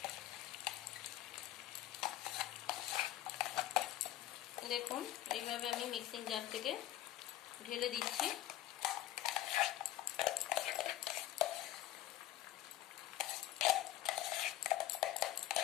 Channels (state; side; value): quieter; right; 14.3 dB